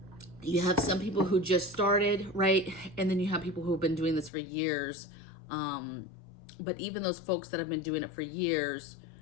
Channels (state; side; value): drops out; right; at 4.3 s